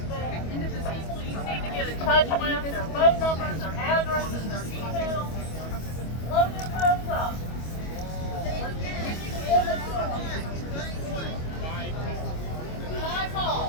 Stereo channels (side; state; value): right; late; 25 ms